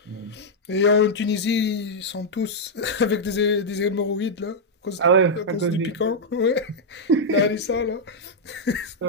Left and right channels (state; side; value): normal; both; correlation -0.04